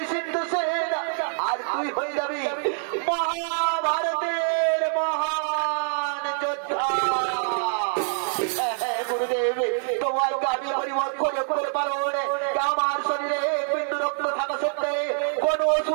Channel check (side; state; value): left; silent; digital silence